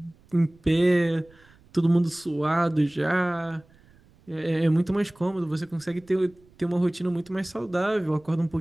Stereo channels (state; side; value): noise; right; rumble, 29 dB below the sound